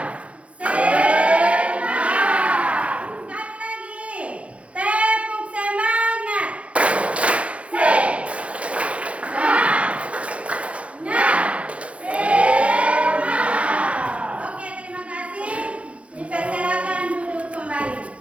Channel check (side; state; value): left; late; 0.062 ms